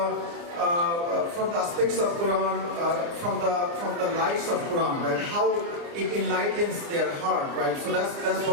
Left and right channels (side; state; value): left; late; 29 ms